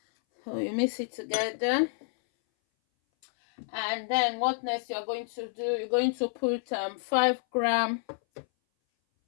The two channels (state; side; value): silent; right; 58 dB below the other